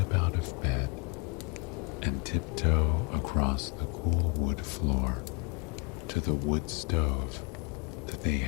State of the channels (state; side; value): quieter; right; 29.4 dB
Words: out of bed and tiptoe across the cool wood floor to the wood stove that they